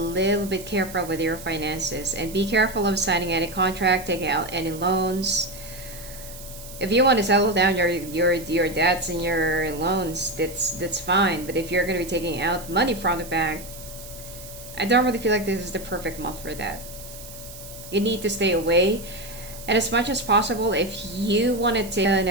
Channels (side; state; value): right; noise; hiss, 15 dB below the sound